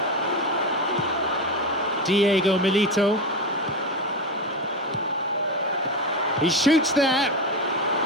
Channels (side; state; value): both; normal; correlation 0.17